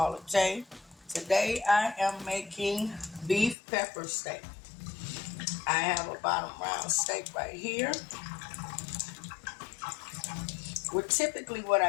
J. Today I am making beef pepper steak. I have a bottom round steak right here. Typically what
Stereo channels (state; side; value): drops out; right; at 3.6 s